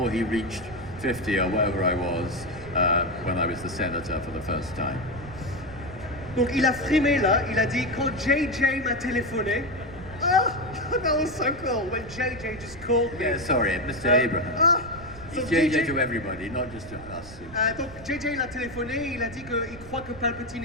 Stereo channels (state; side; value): noise; right; rumble, 16 dB below the sound